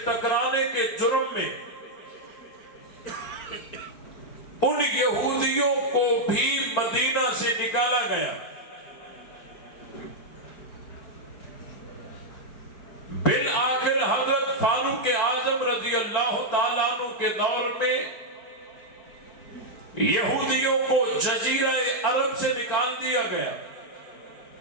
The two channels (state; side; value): late; right; 4.5 ms